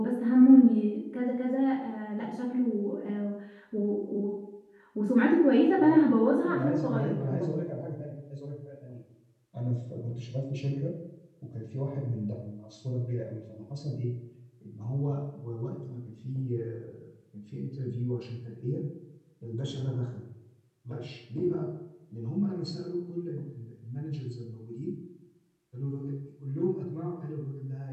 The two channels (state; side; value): identical; both; correlation 1.00